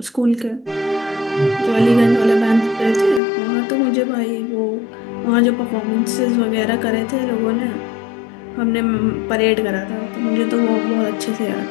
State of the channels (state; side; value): drops out; right; at 3.2 s